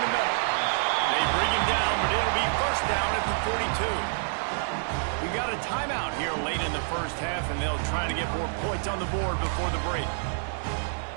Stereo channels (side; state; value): left; silent; digital silence